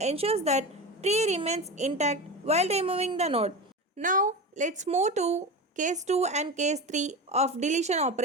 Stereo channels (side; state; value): both; normal; correlation 0.25